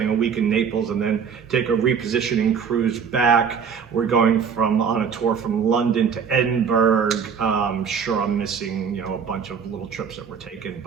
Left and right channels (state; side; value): quieter; left; 6.7 dB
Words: a week in Naples, and then take a repositioning cruise back. We're going on a tour from London to Edinburgh. Sure, I'm missing a bunch of little trips that we're taking,